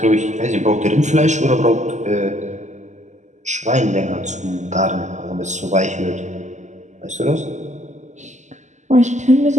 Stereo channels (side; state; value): left; late; 0.34 ms